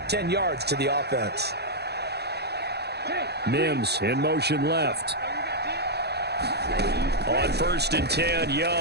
10 yards to the offense. Mims in motion left. On 1st and 10,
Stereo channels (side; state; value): left; late; 0.48 ms